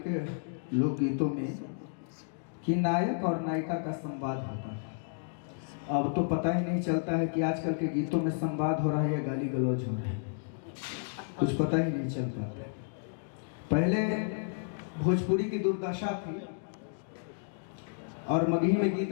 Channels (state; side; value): silent; right; digital silence